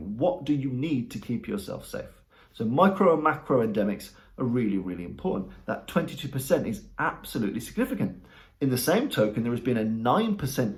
What do you need to keep yourself safe? So micro and macro endemics are really, really important. That 22% is absolutely significant. In the same token, there has been a 9%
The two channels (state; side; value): identical; both; correlation 1.00